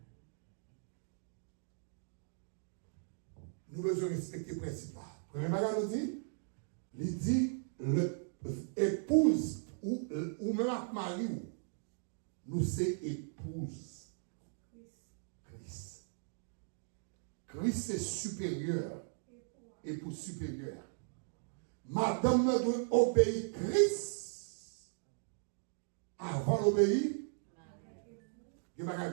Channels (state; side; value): silent; left; digital silence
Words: Nous devons respecter le principe. Premier bagage nous dit, il dit, l'épouse ou même mari, nous c'est épouse. Christ. Christ c'est supérieur. Épouse supérieure. Madame doit obéir Christ avant d'obéir.